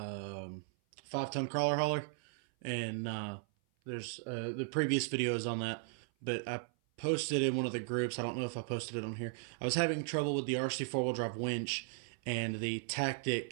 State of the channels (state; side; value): silent; left; 53 dB below the other